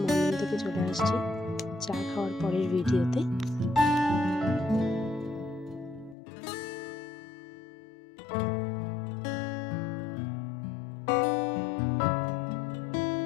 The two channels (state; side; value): drops out; right; at 6.2 s